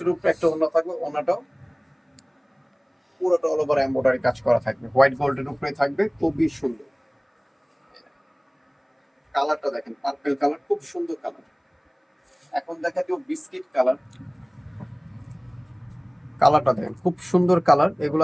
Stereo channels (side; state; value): both; identical; correlation 1.00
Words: উপরে একটা ওড়না থাকবে, ওড়নাটাও পুরোটা অল ওভার এমব্রয়ডারি কাজ করা থাকবে, হোয়াইট গোল্ডের উপরে থাকবে, খুবই সুন্দর। কালারটা দেখেন, পার্পল কালার, খুব সুন্দর কালার। এখন দেখা যাবে বিস্কিট কালার। কালারটা দেখেন, খুব সুন্দর কালার। এগুলো